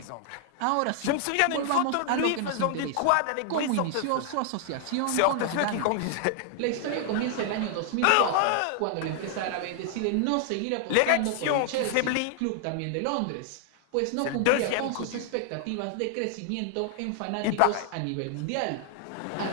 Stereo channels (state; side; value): different; both; correlation 0.00